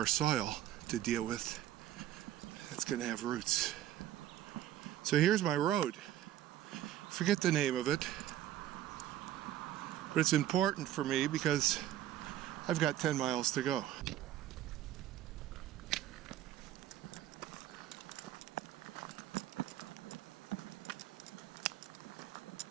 soil to deal with. It's going to have roots. So here's my road. Forget the name of it. But it's important for me because I've got 10 miles to go.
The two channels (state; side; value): quieter; left; 12.5 dB